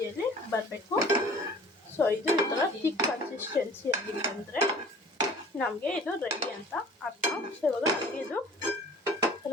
ಬರಬೇಕು. ಸೊ ಇದು ಈ ಥರ ಥಿಕ್ ಕನ್ಸಿಸ್ಟೆನ್ಸಿಯಲ್ಲಿ ಬಂದರೆ ನಮಗೆ ಇದು ರೆಡಿ ಅಂತ ಅರ್ಥ. ಸೊ ಇವಾಗ ನಮಗೆ ಇದು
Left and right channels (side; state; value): both; normal; correlation 0.48